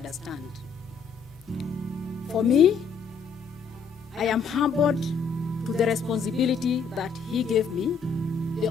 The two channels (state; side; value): quieter; right; 5.6 dB